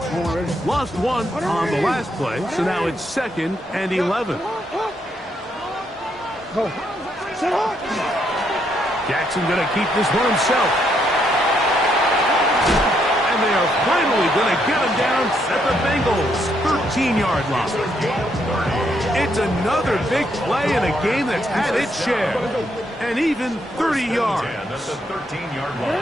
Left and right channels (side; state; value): both; normal; correlation 0.75